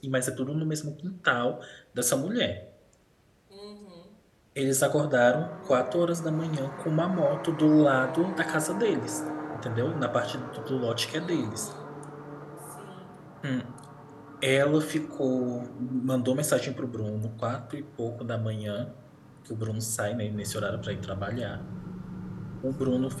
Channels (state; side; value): identical; both; correlation 1.00